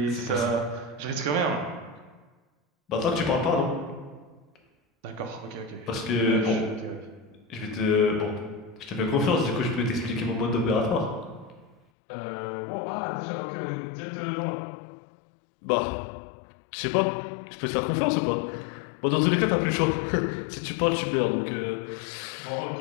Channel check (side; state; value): right; drops out; at 11.8 s